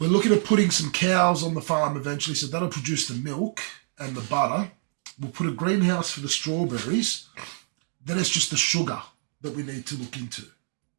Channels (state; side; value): silent; left; 55 dB below the other